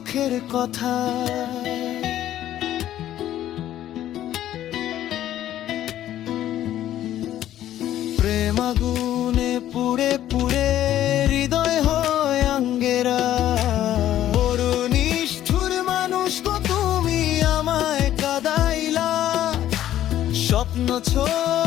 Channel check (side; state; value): right; quieter; 12.4 dB